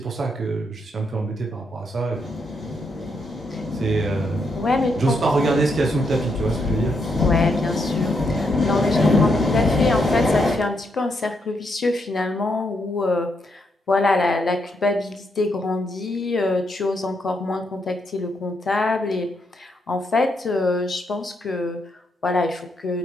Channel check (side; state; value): both; normal; correlation 0.79